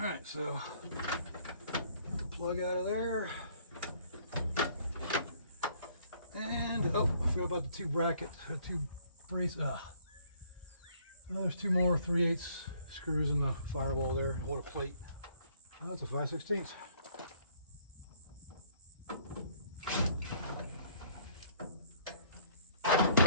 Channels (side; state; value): both; inverted; correlation -0.61